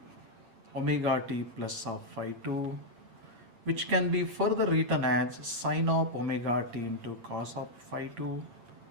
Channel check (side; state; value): left; late; 9.3 ms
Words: omega t plus of phi 2, which can be further written as sine of omega t into cos of phi 2